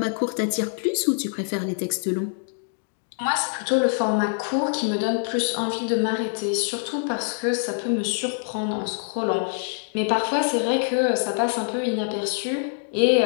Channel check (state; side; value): silent; right; digital silence